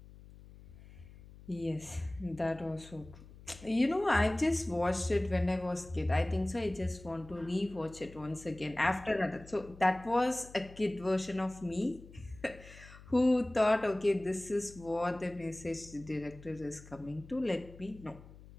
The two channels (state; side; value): noise; left; hum, 19 dB below the sound